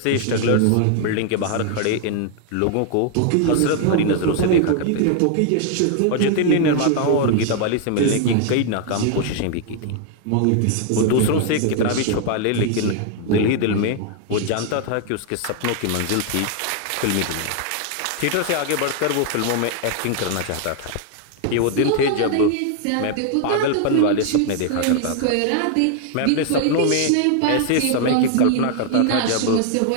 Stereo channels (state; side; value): different; both; correlation 0.00